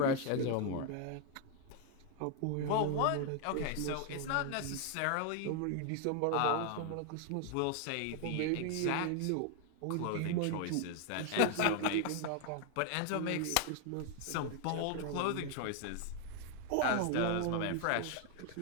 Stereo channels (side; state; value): both; different; correlation 0.00